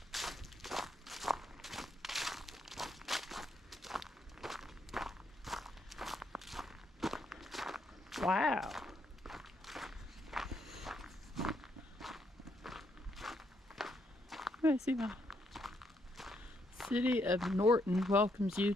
Wow. Let's see my City of Norton welcomes you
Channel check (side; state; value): both; normal; correlation 0.75